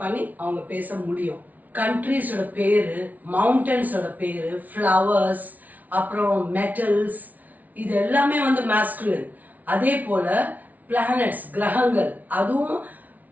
பண்ணி அவங்க பேச முடியும். கண்ட்ரீஸோட பேரு, மவுண்டன்ஸோட பேரு, ஃப்ளவர்ஸ், அப்புறம் மெட்டல்ஸ், இது எல்லாமே வந்து மாஸ்குலின். அதே போல பிளானட்ஸ் கிரகங்கள் அதுவும்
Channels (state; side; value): late; left; 0.075 ms